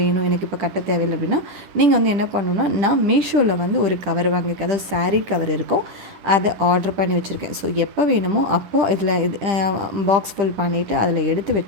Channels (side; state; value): left; late; 10 ms